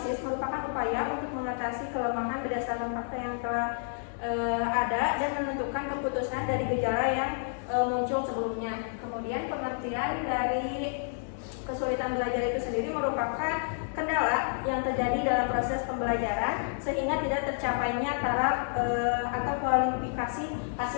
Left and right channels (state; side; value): silent; right; digital silence